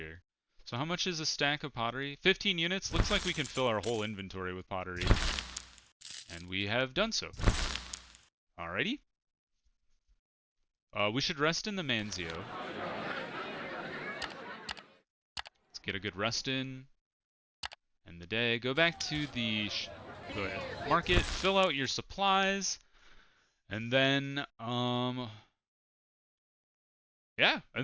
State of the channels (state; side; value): identical; both; correlation 1.00